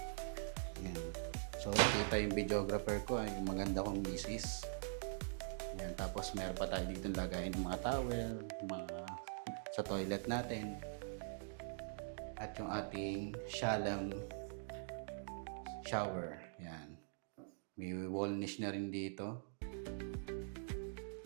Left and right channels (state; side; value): silent; left; digital silence